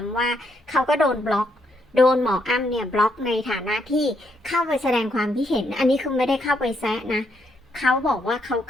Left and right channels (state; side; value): normal; both; correlation 0.76